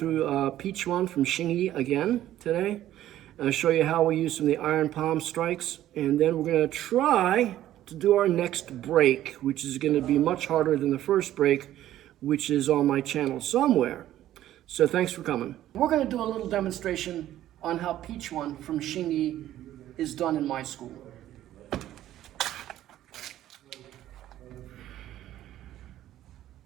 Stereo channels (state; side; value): quieter; left; 13.1 dB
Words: Peach One from Shingi again today. I'll show you how we use some of the iron palm strikes, and then we're going to try to do our next break, which is going to be much harder than the first break, which is on my channel somewhere. So thanks for coming. We're going to do a little demonstration on how Peach One from Shingi is done in my school.